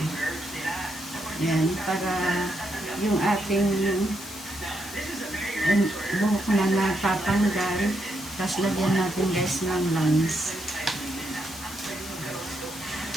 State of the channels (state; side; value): noise; left; hiss, 13 dB below the sound